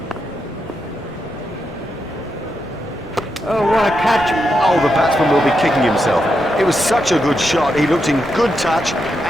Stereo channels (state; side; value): normal; both; correlation 0.84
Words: Oh, what a catch! Oh, the batsman will be kicking himself. It was such a good shot. He looked in good touch,